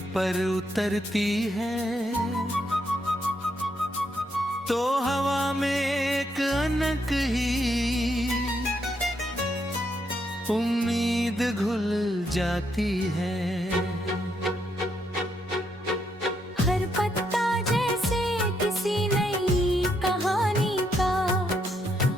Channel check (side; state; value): both; normal; correlation 0.77